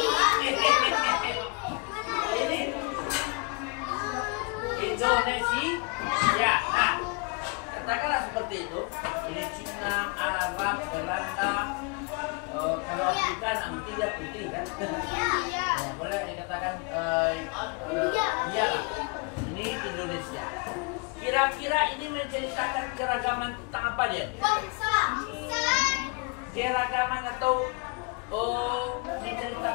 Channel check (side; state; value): right; quieter; 33.1 dB